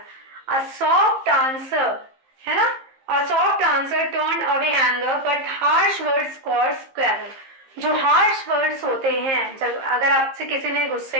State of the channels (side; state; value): left; late; 15 ms